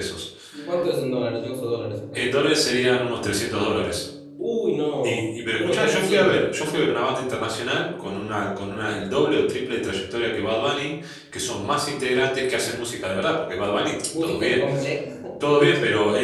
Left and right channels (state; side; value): identical; both; correlation 1.00